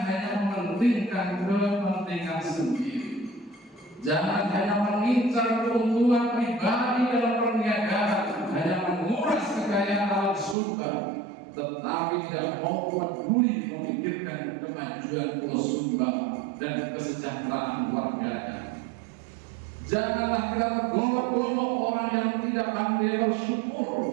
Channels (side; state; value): left; drops out; at 10.6 s